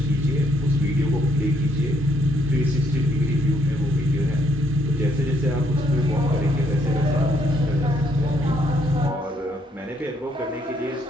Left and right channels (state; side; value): normal; both; correlation 0.71